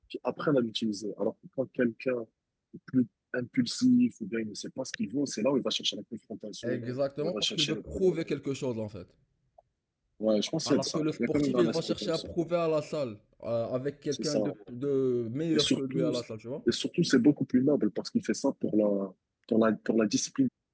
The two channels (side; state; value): both; identical; correlation 1.00